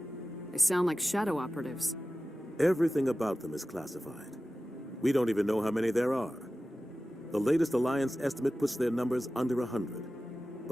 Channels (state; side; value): normal; both; correlation 0.95